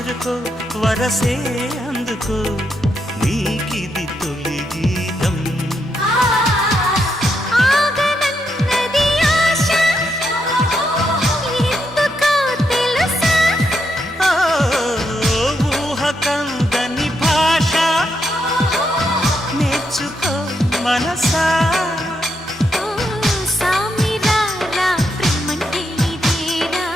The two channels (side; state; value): both; normal; correlation 0.80